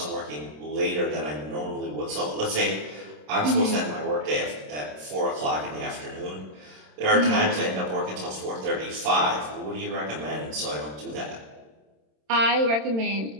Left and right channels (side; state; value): left; late; 27 ms